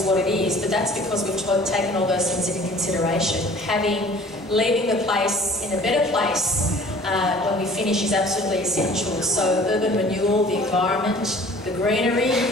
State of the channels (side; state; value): both; normal; correlation 0.49